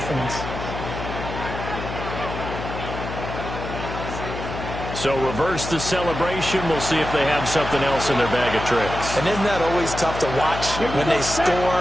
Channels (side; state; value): left; noise; hum, 7 dB below the sound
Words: So reverse the celebration. We'll see if they have something else in their bag of tricks. And isn't that always tough to watch when they score